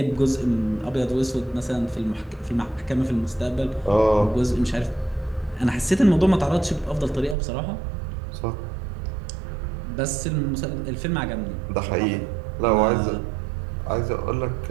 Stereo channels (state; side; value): drops out; left; at 7.4 s